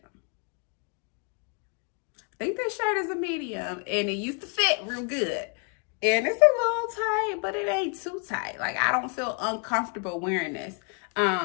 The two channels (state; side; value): quieter; right; 37.0 dB